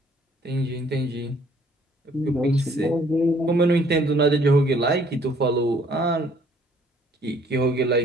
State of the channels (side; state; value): both; normal; correlation 0.61